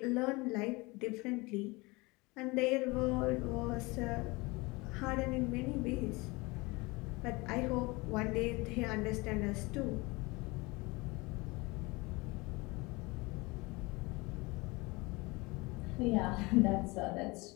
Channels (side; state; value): right; quieter; 24.5 dB